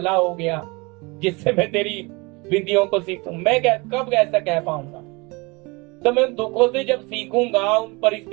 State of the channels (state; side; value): quieter; left; 26.6 dB